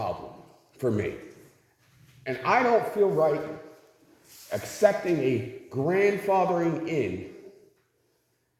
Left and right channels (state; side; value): identical; both; correlation 1.00